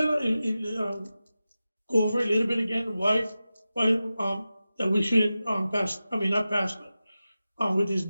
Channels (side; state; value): both; inverted; correlation -0.94